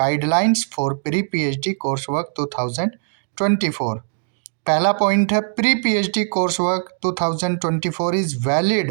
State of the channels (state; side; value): silent; left; digital silence